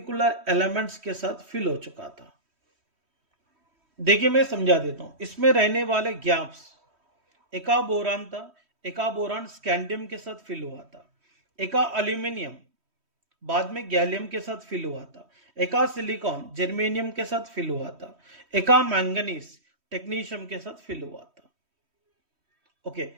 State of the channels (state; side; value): late; left; 3.1 ms